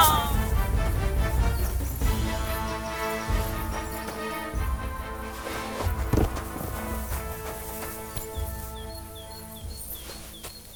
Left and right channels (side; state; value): both; identical; correlation 1.00